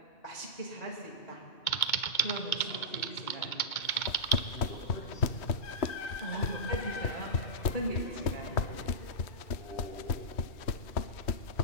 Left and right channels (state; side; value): late; right; 2.2 ms